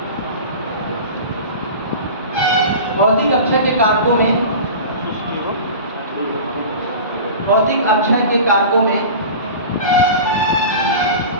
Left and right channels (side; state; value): both; inverted; correlation -0.34